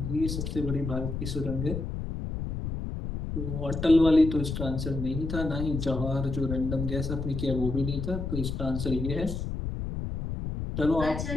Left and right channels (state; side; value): noise; left; rumble, 4 dB below the sound